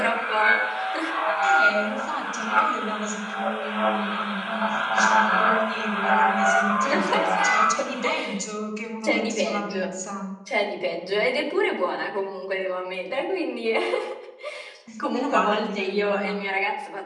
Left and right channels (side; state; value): both; identical; correlation 1.00